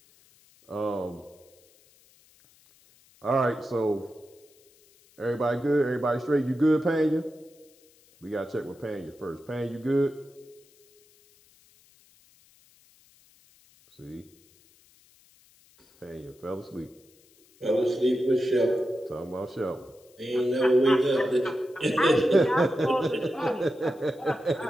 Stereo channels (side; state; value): left; noise; hiss, 30 dB below the sound